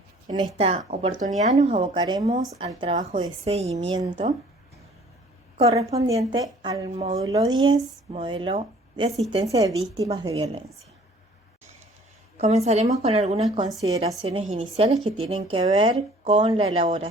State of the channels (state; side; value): normal; both; correlation 0.54